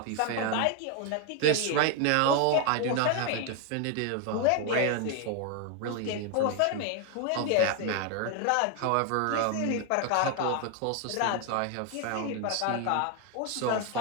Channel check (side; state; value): both; different; correlation 0.01